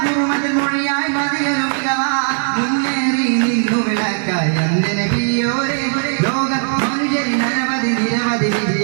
കുറുമതിൽ മൊഴിയായി മതിയൊരു മികവാ മുന്നേറി നിന്നു വിളക്കായി അന്റെ നബിയോരെ ലോക മനുഷ്യരിൽ അനവധി നിരവധി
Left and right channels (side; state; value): left; silent; digital silence